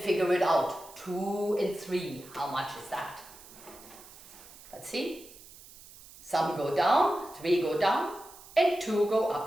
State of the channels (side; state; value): right; noise; hiss, 20 dB below the sound